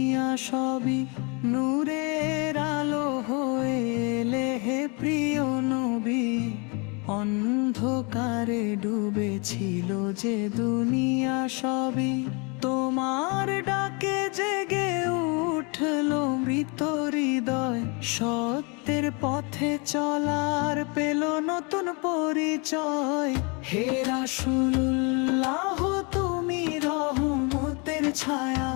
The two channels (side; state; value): right; quieter; 31.9 dB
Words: সবই নূরের আলো হয়ে এলে হে প্রিয় নবী। অন্ধকারে ডুবেছিল যে দুনিয়া সবই তোমার ডাকে জেগে উঠলো মৃত হৃদয়। সত্যের পথে চলার পেল নতুন পরিচয়। হে রাসূলুল্লাহ তুমি রহমতের ছায়া,